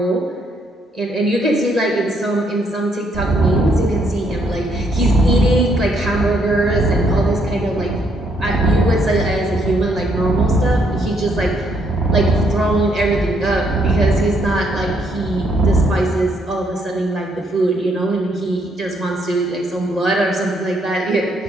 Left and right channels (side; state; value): both; normal; correlation 0.72